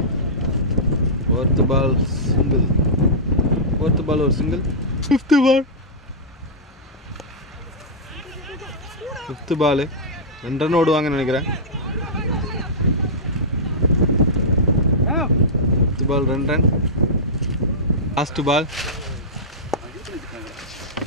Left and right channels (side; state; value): both; normal; correlation -0.13